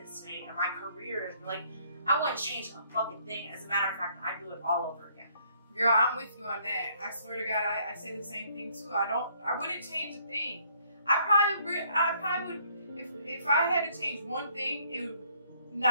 today, and my career is like, I wouldn't change a fucking thing. As a matter of fact, I'd do it all over again. Girl, I'm with you on that. I swear to God, I say the same thing too. I wouldn't change a thing. I probably would, if I had to change one thing, it would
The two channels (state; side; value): inverted; both; correlation -0.64